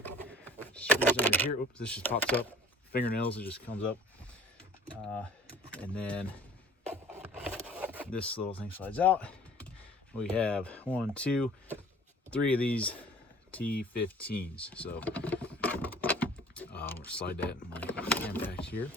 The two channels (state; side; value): normal; both; correlation 0.50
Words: screws under here. Oops, this just pops up. Fingernails, it just comes up. And then this little thing slides out. We have 1, 2, 3 of these T15s. So we'll slide that in my impact here.